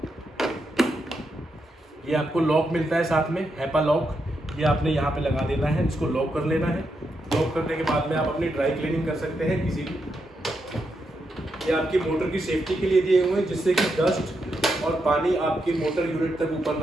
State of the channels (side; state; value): both; normal; correlation 0.83